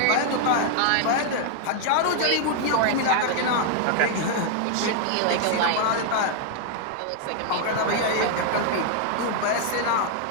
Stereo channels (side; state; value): both; different; correlation 0.00